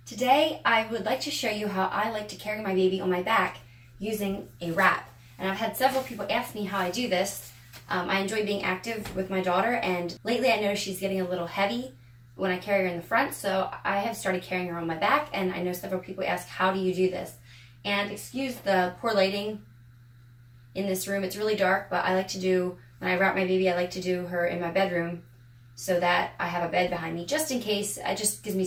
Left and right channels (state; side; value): identical; both; correlation 1.00